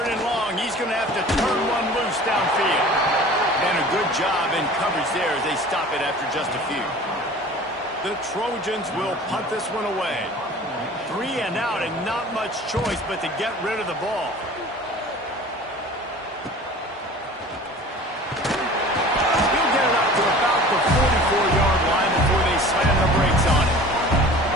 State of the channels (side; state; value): both; normal; correlation 0.43